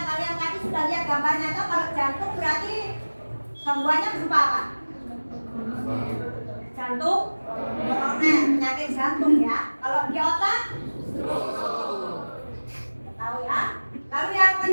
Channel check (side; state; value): both; inverted; correlation -1.00